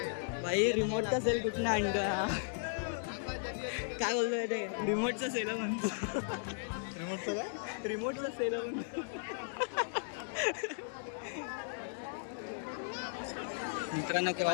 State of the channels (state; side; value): silent; right; digital silence